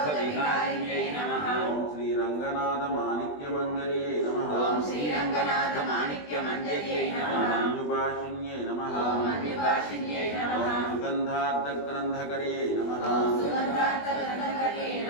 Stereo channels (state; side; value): late; right; 20 ms